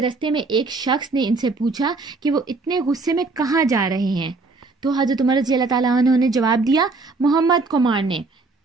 में एक शख्स ने इनसे पूछा कि वो इतने गुस्से में कहाँ जा रहे हैं। तो हजरत उमर रज़ी अल्लाह ताला अन्हु ने जवाब दिया, मोहम्मद को मारने।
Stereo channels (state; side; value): quieter; left; 3.7 dB